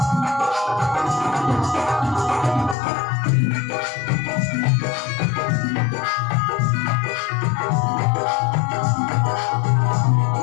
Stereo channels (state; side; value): drops out; right; at 2.8 s